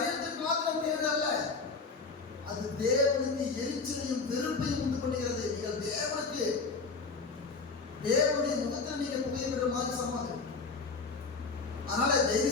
மாத்திரம் கேடு அல்ல, அது தேவனுக்கு எரிச்சலையும் வெறுப்பையும் உண்டு பண்ணுகிறது. நீங்கள் தேவனுடைய முகத்தில் நீங்க புகையிடுற மாதிரி சமாதி. அதனால தயவு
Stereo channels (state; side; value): quieter; right; 4.3 dB